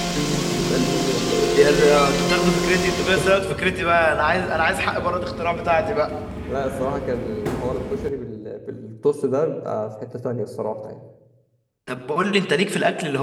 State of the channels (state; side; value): identical; both; correlation 1.00